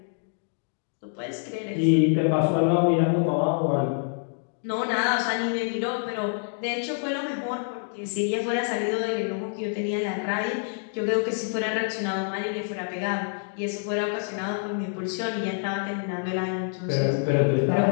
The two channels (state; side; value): silent; right; 58 dB below the other